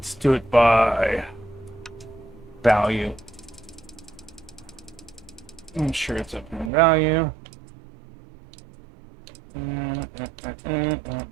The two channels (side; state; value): left; drops out; at 6.7 s